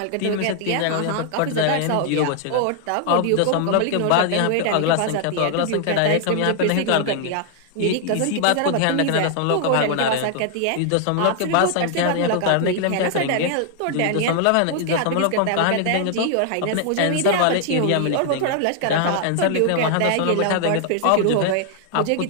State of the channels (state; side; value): different; both; correlation 0.00